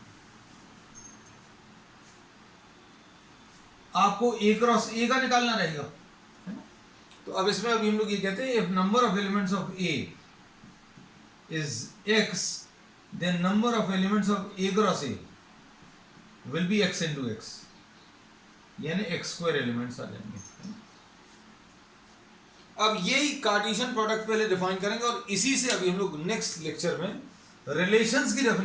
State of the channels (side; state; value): both; identical; correlation 1.00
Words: आपको ए क्रॉस ए का निकालना रहेगा, है ना। तो अब इसमें अभी हम लोग ये कहते हैं if number of elements of A is X then number of elements of A cross A will be X into X, यानी एक्स स्क्वायर एलिमेंट्स आ जाएंगे। अब यही कार्टेशियन प्रोडक्ट पहले डिफाइन करेंगे और इसी से अभी हम लोग नेक्स्ट लेक्चर में रिलेशंस की